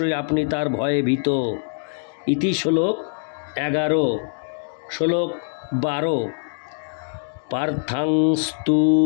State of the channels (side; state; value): right; silent; digital silence